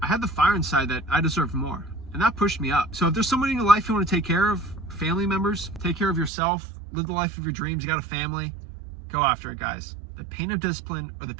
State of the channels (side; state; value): left; drops out; at 6.3 s